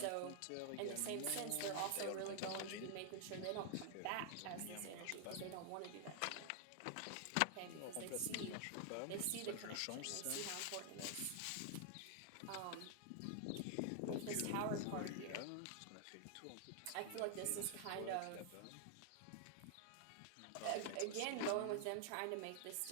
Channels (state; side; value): different; both; correlation 0.00